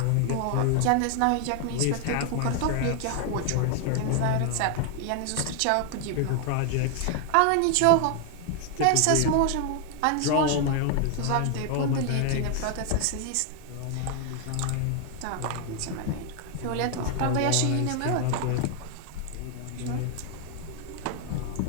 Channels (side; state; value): both; different; correlation 0.00